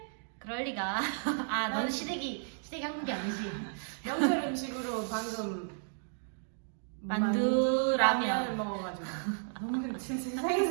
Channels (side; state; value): left; silent; digital silence